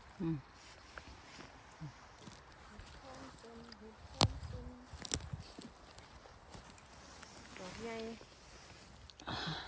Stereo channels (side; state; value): both; identical; correlation 1.00